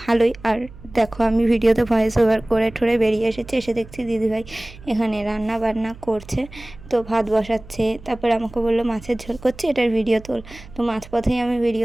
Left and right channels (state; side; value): noise; right; hum, 19 dB below the sound